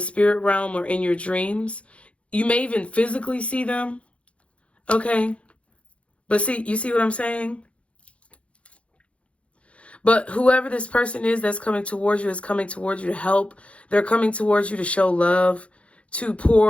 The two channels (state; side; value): late; right; 0.062 ms